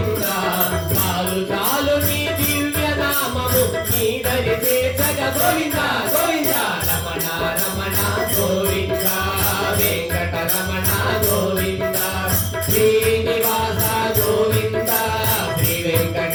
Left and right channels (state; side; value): identical; both; correlation 1.00